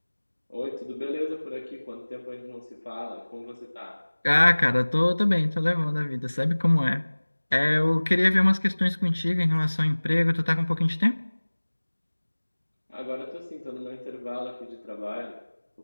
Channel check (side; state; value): both; inverted; correlation -1.00